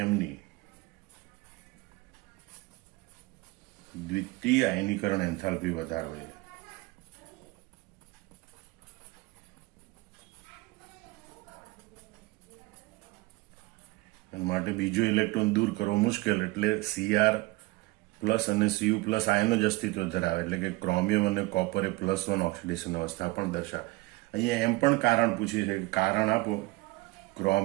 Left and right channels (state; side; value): quieter; left; 21.5 dB